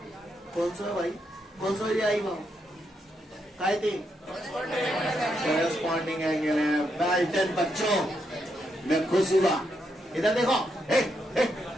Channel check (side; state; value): both; normal; correlation 0.80